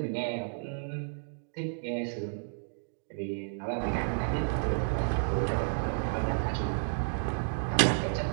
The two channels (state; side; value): silent; left; digital silence